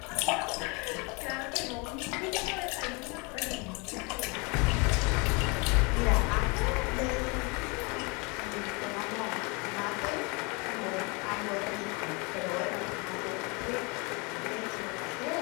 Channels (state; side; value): quieter; right; 29.9 dB